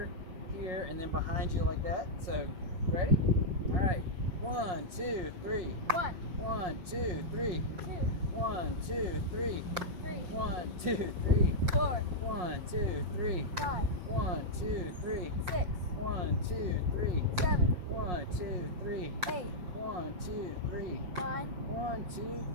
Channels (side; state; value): left; late; 5.6 ms